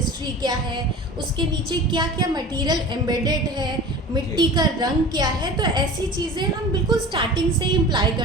क्या है, उसके नीचे क्या क्या मटेरियल एम्बेडेड है, मिट्टी का रंग क्या है, तो ऐसी चीज़ें हम बिल्कुल स्टार्टिंग से ही इम्प्लाई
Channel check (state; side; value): normal; both; correlation 0.37